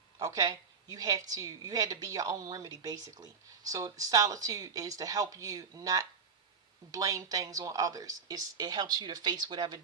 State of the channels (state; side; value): quieter; left; 5.7 dB